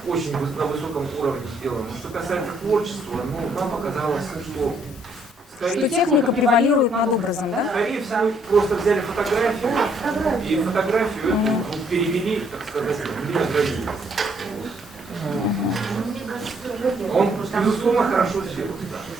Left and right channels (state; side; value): normal; both; correlation 0.68